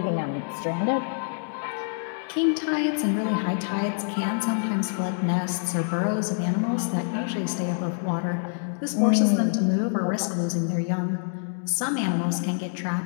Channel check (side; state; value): right; silent; digital silence